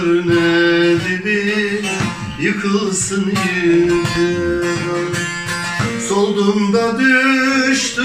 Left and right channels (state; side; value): identical; both; correlation 1.00